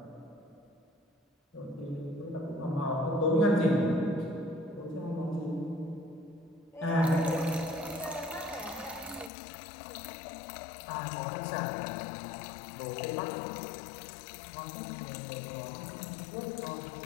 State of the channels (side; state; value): right; drops out; at 9.3 s